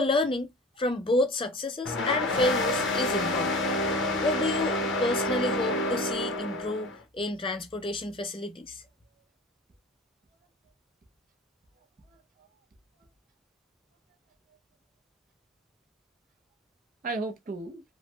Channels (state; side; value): normal; both; correlation 0.38